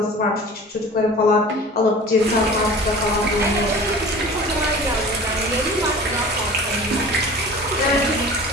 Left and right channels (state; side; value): normal; both; correlation 0.40